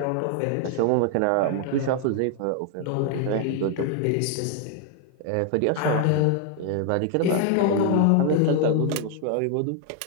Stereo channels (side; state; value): both; different; correlation 0.00